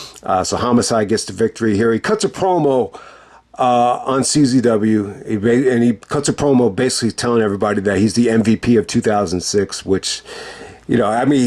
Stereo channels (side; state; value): both; identical; correlation 1.00